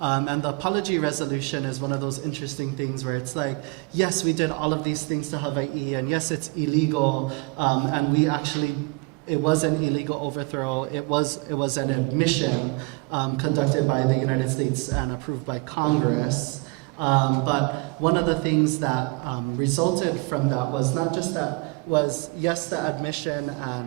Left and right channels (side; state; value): left; quieter; 28.1 dB